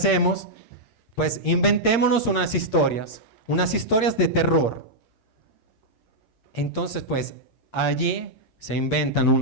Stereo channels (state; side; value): late; right; 8.7 ms